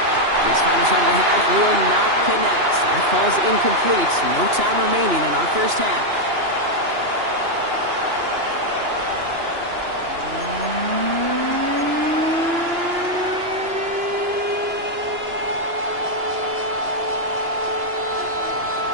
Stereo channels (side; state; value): left; late; 2.9 ms